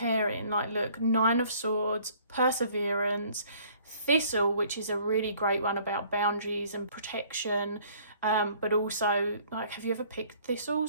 Like, look, 9 of Swords, Perseverance, 𝗕𝗿𝗄𝗀, which is a really great one about boundaries and protection, but also, like, have you ever picked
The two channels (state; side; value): inverted; both; correlation -0.57